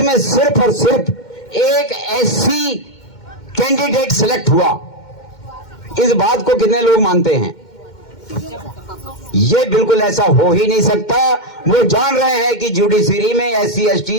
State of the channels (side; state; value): right; late; 2.1 ms